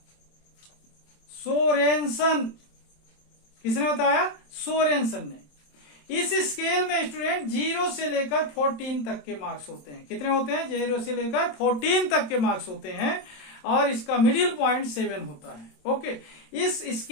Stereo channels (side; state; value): right; late; 27 ms